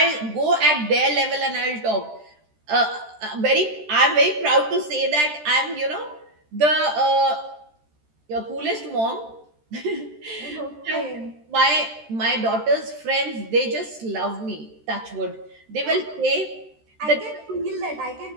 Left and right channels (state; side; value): late; left; 13 ms